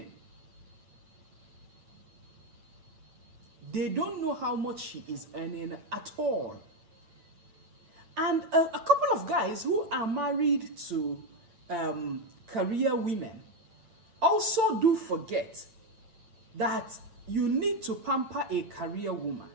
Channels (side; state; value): left; late; 9.1 ms